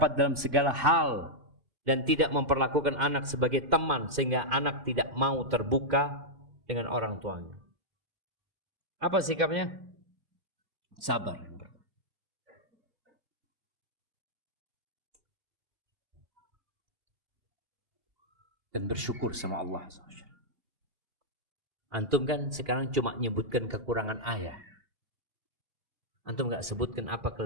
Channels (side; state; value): left; late; 2.5 ms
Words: dalam segala hal, dan tidak memperlakukan anak sebagai teman sehingga anak tidak mau terbuka dengan orang tuanya. Apa sikapnya? Sabar. Dan bersyukur sama Allah. Antum kan sekarang cuma nyebutkan kekurangan ayah. Antum gak sebutkan apa